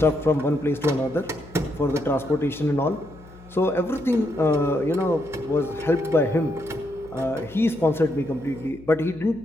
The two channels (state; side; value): noise; left; hum, 21 dB below the sound